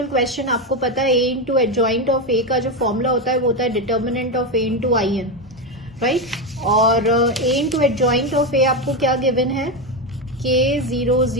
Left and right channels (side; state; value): both; normal; correlation 0.11